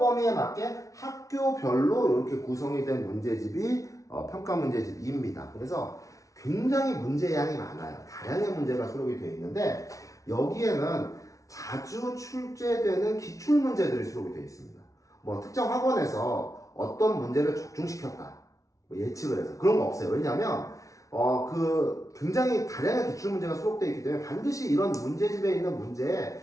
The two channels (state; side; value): late; right; 0.16 ms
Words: 맞게 학교별로 이렇게 구성이 된 문제집이 평가 문제집 2입니다. 그래서 굉장히 문제량이 많아요. 다양한 문제가 수록이 되어 있는데 여기에는 자주 출제되는 기출 문제들이 수록이 되어 있습니다. 뭐 특정 학원에서 어떤 문제를 적중시켰다 뭐 예측을 해서 그런 거 없어요. 왜냐하면 굉장히 다양한 기출 문제가 수록되어 있기 때문에 반드시 이런 문제집에 있는 문제에